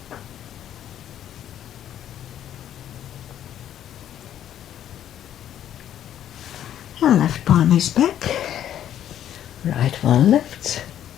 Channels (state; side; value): quieter; right; 10.8 dB